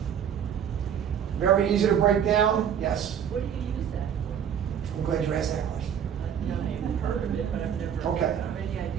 Very easy to break down, yes. What do you use that for? I'm glad you asked that question. I've heard of it, but I've never Okay. have any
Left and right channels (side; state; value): left; quieter; 8.5 dB